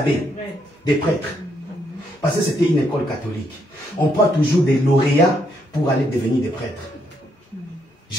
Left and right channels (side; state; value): both; normal; correlation 0.75